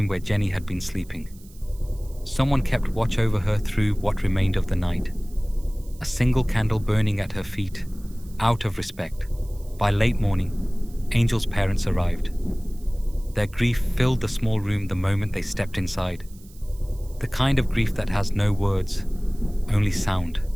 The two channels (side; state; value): right; noise; hiss, 25 dB below the sound